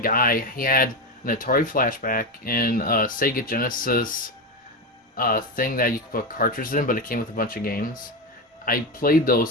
he had an Atari flashback and a Sega Genesis thing that you could put cartridges in, but it came with a bunch of games. I played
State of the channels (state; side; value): normal; both; correlation 0.14